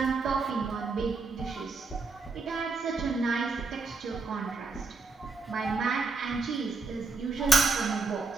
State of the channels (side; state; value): left; quieter; 3.9 dB